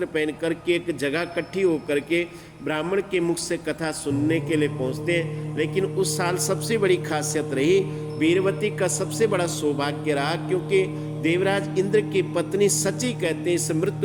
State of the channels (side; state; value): both; identical; correlation 1.00